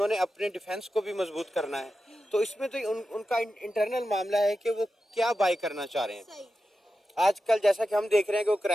अपने डिफेंस को भी मजबूत करना है। तो इसमें तो उनका इंटरनल मामला है कि वो क्या बाय करना चाह रहे हैं। आजकल जैसा कि हम देख रहे हैं कि वो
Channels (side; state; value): both; normal; correlation 0.91